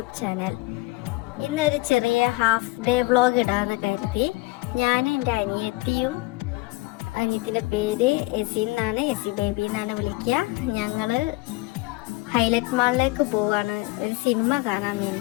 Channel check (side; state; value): right; quieter; 22.3 dB